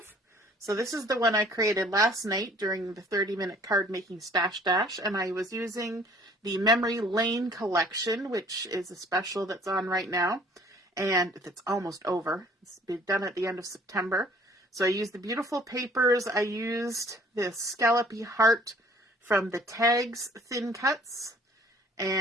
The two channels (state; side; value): normal; both; correlation 0.55